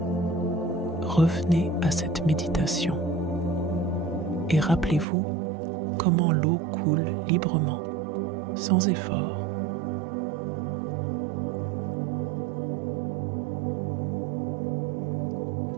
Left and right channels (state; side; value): drops out; left; at 5.1 s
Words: revenez à cette méditation et rappelez-vous comment l'eau coule librement, sans effort.